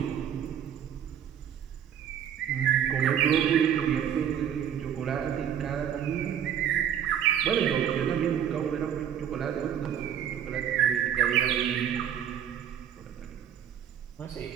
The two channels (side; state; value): left; quieter; 9.3 dB